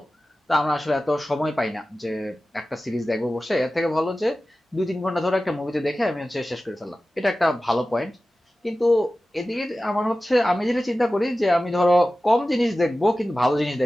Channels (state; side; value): normal; both; correlation 0.95